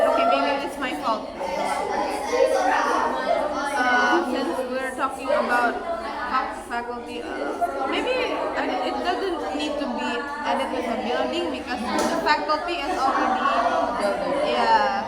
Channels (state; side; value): identical; both; correlation 1.00